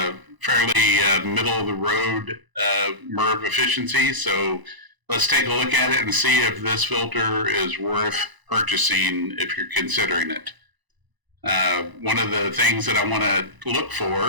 fairly middle-of-the-road Merv efficiency, so let's take a look at it and see if this filter is worth purchasing if you're considering it. One of the things that I want to look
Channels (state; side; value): late; left; 1.0 ms